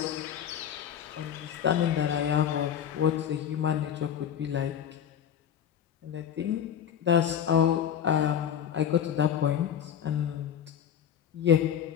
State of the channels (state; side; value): quieter; right; 9.1 dB